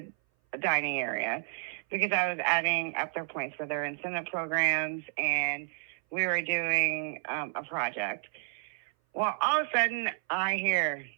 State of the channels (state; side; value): silent; left; 57 dB below the other